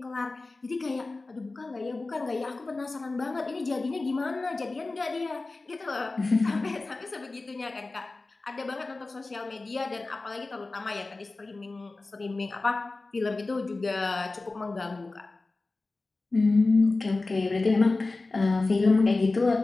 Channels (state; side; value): quieter; right; 3.4 dB